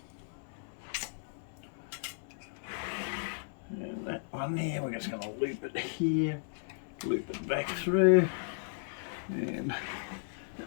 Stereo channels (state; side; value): silent; right; 54 dB below the other